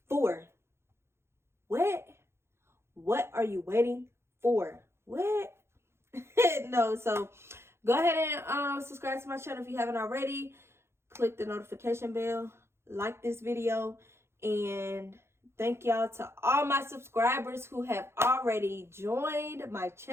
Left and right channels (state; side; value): late; left; 0.12 ms